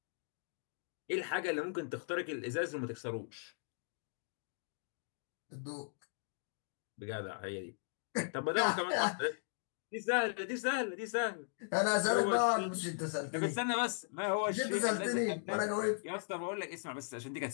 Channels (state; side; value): silent; right; digital silence